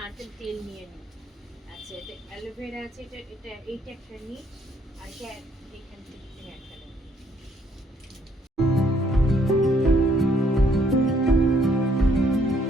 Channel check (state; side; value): normal; both; correlation 0.67